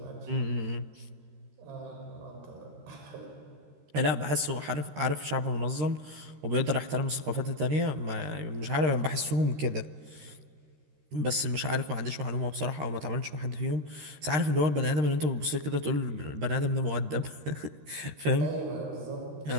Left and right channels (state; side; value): late; left; 13 ms